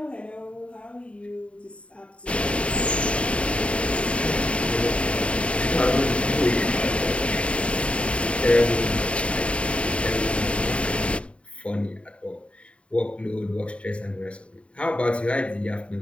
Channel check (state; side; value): late; right; 0.061 ms